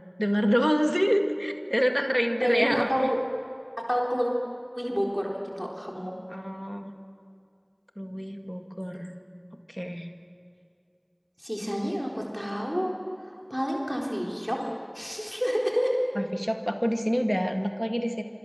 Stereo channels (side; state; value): both; identical; correlation 1.00